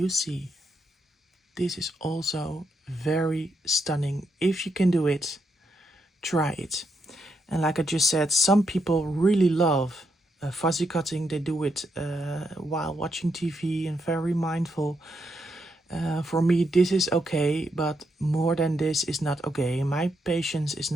see, this is also very stunning. If you can do it, try it. And like I just said, some people really love fuzzy cutting. They do it while watching TV and very mindful. For me, this is okay, but more than this is not okay. My patience is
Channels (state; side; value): normal; both; correlation 0.80